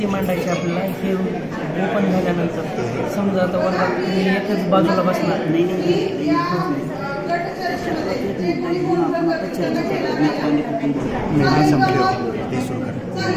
मांडायचे आपल्याला? हे ओपन झाल्यानंतर. समजा आता वर्गात तुम्ही एकच बाजूला बसणार नाही.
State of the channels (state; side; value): identical; both; correlation 1.00